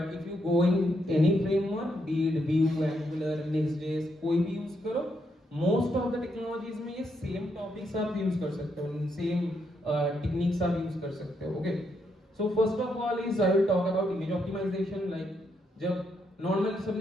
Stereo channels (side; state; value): both; normal; correlation 0.78